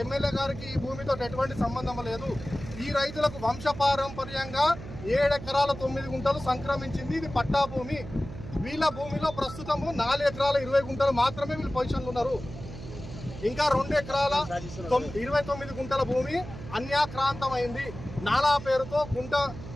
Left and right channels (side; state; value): right; noise; hum, 12 dB below the sound